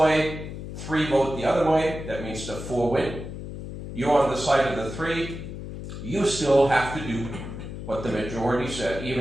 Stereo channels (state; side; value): noise; left; hum, 9 dB below the sound